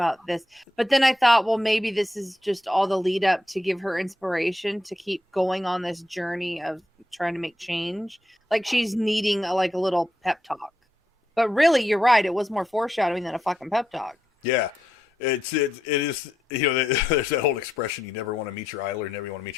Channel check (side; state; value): both; normal; correlation 0.82